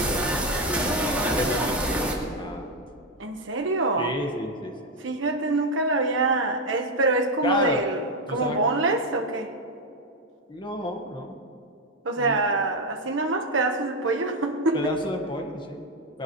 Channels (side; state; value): both; normal; correlation 0.07